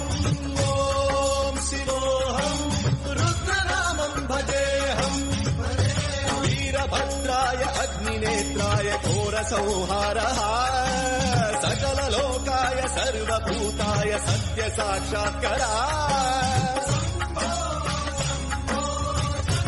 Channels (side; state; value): both; identical; correlation 1.00